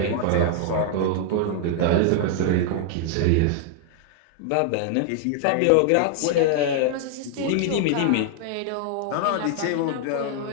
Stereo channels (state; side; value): different; both; correlation 0.00